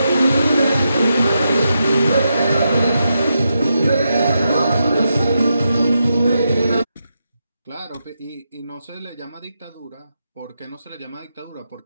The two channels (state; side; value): inverted; both; correlation -0.85